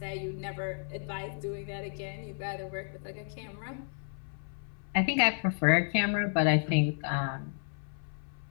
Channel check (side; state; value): right; silent; 56 dB below the other